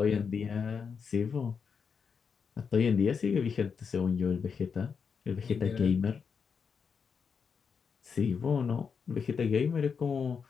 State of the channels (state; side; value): quieter; right; 6.1 dB